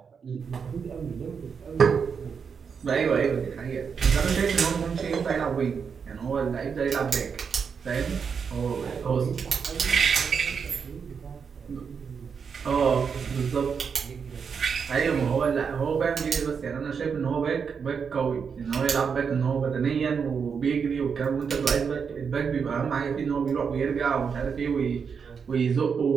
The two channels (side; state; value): left; quieter; 6.2 dB